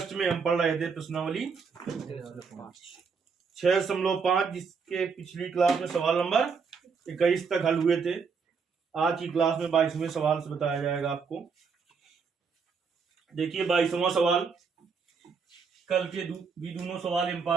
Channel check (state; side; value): quieter; left; 5.5 dB